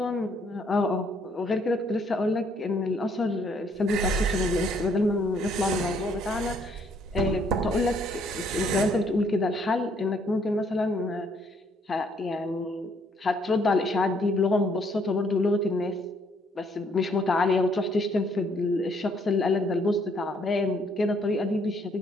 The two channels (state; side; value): normal; both; correlation 0.67